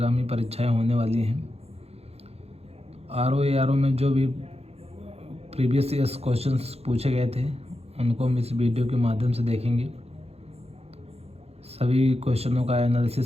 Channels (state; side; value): late; left; 0.30 ms